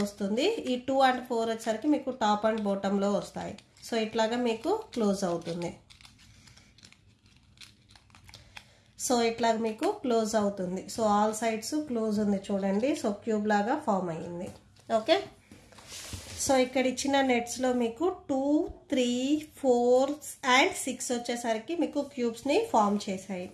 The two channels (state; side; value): identical; both; correlation 1.00